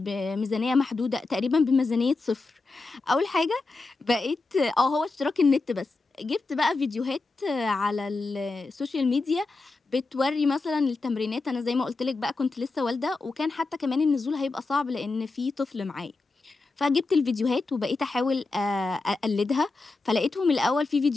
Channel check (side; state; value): right; quieter; 3.6 dB